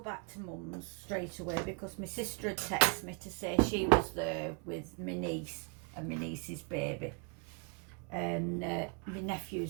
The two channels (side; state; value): left; quieter; 36.0 dB